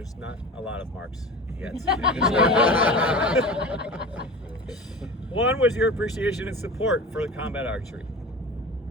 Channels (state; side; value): normal; both; correlation 0.33